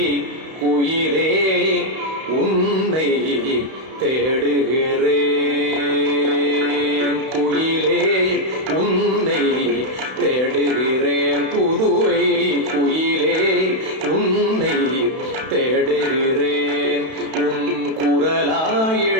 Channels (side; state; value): left; late; 31 ms